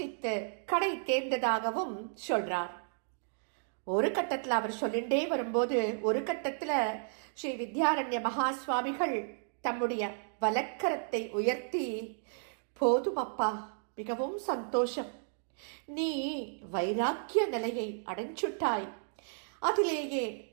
கடை தேர்ந்ததாகவும் சொல்றார். ஒரு கட்டத்தில் அவர் சொல்லிண்டே வரும்போது ஒரு கட்டத்தில் ஸ்ரீ வித்யாரண்ய மகா சுவாமிகள் தம்முடைய வலக்கரத்தை உயர்த்தி, போதும் அப்பா, மிகவும் சந்தோஷம், நீ வைராக்கிய நிலையை அடைஞ்சுட்டாய், அதிலேயே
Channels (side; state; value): left; silent; digital silence